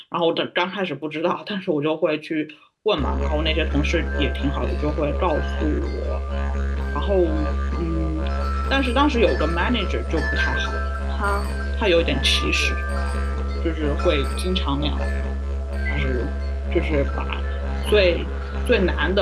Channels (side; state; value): both; identical; correlation 1.00